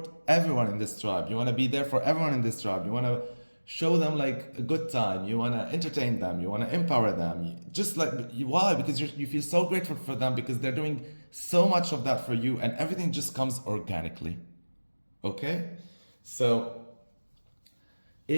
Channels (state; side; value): inverted; both; correlation -1.00